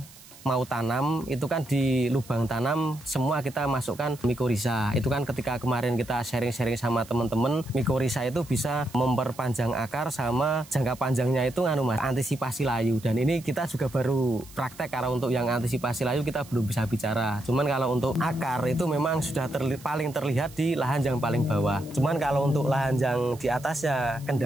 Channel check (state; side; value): noise; right; hiss, 21 dB below the sound